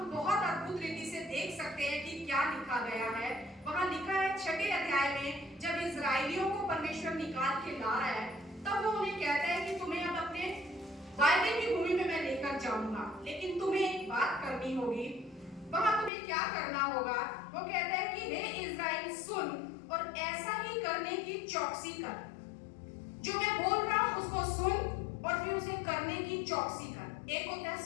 बहुत अद्भुत रीति से देख सकते हैं कि क्या लिखा गया है। वहां लिखा है 6वें अध्याय में, जब इजराइलियों को परमेश्वर निकाल के ला रहा है, तब वो उन्हें कहता है कि तुम्हें अब अपने वायदे की भूमि में मैं लेकर जाऊंगा, लेकिन तुम्हें एक बात करनी होगी। वहां तुम्हें क्या करना होगा? वो कहता है कि हे इज़राइल सुन और ऐसा ही करने की चौकसी कर। जो मैं बोल रहा हूं उसको सुन और फिर उसे करने की चौकसी कर। एक होता है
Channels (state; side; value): drops out; right; at 16.1 s